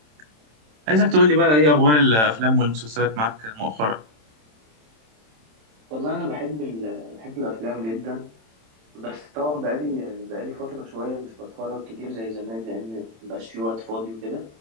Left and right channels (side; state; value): left; late; 27 ms